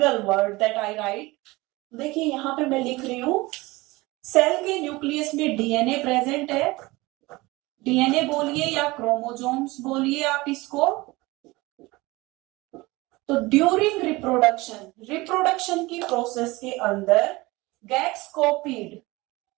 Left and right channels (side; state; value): left; quieter; 21.7 dB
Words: word that I write. देखिए यहाँ पे मैं लिख रही हूँ, सेल के न्यूक्लियस में डीएनए प्रेजेंट है, डीएनए बोलिए या क्रोमोसोम्स बोलिए आप इसको। तो ड्यूरिंग रिप्रोडक्शन, रिप्रोडक्शन की प्रोसेस के अंदर गेट्स